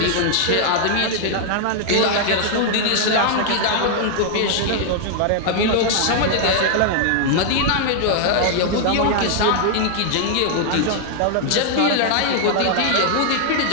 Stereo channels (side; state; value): both; different; correlation -0.01